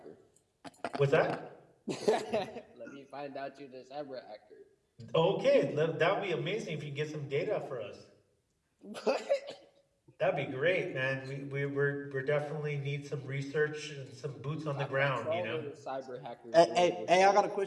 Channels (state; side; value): identical; both; correlation 1.00